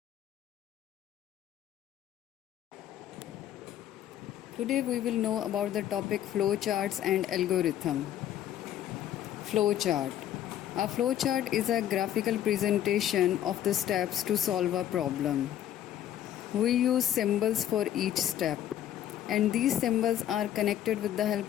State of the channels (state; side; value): quieter; right; 11.4 dB